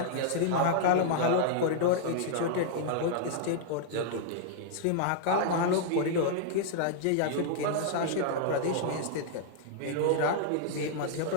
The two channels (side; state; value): both; different; correlation -0.01